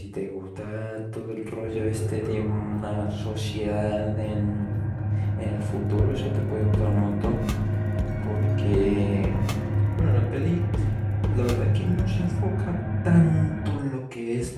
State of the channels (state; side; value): identical; both; correlation 1.00